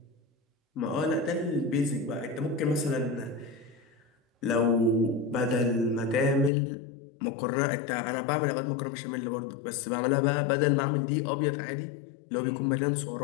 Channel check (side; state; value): right; drops out; at 6.5 s